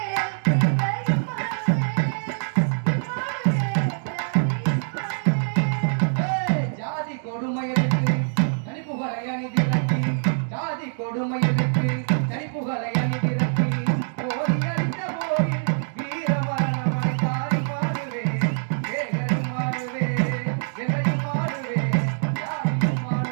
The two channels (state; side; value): silent; left; digital silence